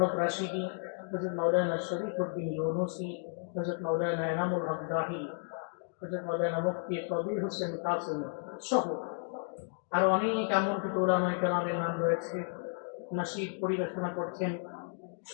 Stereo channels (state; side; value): silent; right; 56 dB below the other